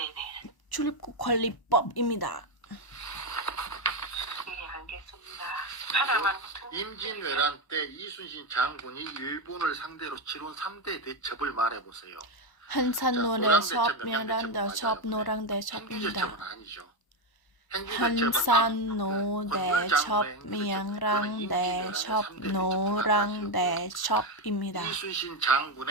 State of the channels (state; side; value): late; right; 1.0 ms